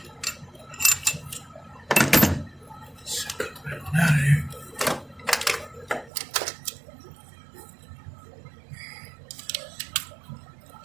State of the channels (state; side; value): drops out; left; at 6.1 s